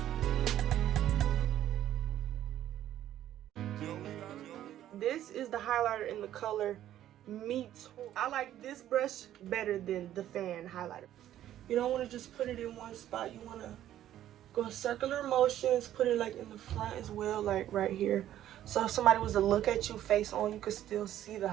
This is the highlighter in the color Meat. I like this brush better than the fan highlighter. You don't want to just put it in one spot. You want to go circular motions, put it like in the front as well, like right here. So if somebody was to look at you face on, you could still see the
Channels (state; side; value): quieter; left; 12.2 dB